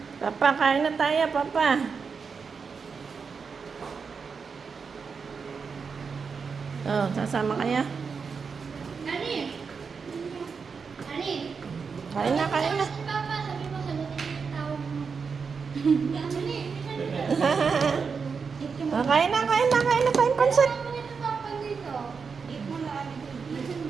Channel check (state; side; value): quieter; left; 5.5 dB